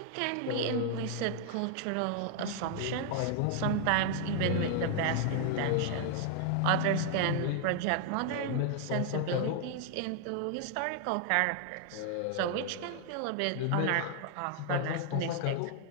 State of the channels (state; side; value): different; both; correlation 0.00